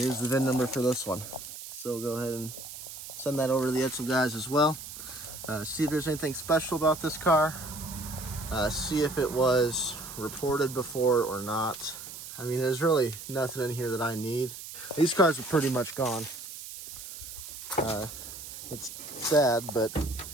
the VIN number for this one. So we'll go ahead and send that over to the EDSELS guys as well. See if there's anything special about this car. See if it was reported before or not. I mean, there's really nothing in here that I need. These cars are pretty much gone. It's sad, but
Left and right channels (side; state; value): right; noise; hiss, 11 dB below the sound